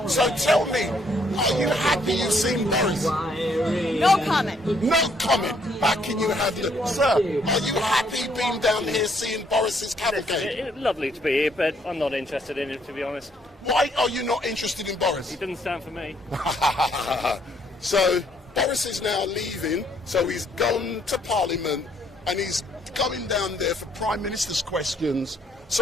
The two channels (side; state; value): both; normal; correlation 0.68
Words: So tell me, are you happy you've seen Boris? No comment. No comment. How can you have the... Sir, are you happy being down here seeing Boris's cavalcade? Lovely to be here, but I'm not interested in it, to be honest. Why are you not interested in Boris? He doesn't stand for me. So Boris is now leaving, so he's gone to Parliament and he's going down there for Prime Minister's questions.